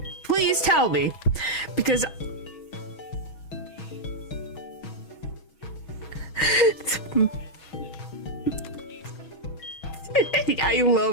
Please tell me. Because... I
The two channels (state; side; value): late; right; 6.3 ms